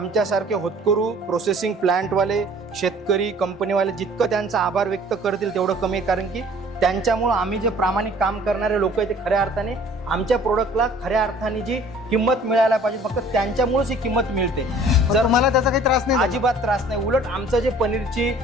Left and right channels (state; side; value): normal; both; correlation 0.52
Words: होतकरू प्रोसेसिंग प्लांटवाले शेतकरी कंपनीवाले जितकं त्यांचा आभार व्यक्त करतील तेवढं कमी आहे, कारण की त्यांच्यामुळं आम्ही जे प्रामाणिक काम करणारे लोक आहेत ते खऱ्या अर्थाने आमच्या प्रोडक्टला खऱ्या अर्थाने जी किंमत मिळायला पाहिजे फक्त त्यांच्यामुळेच ही किंमत मिळते। जर मला त्याचा काही त्रास नाही, अजिबात त्रास नाही, उलट आमचं जे पनीरची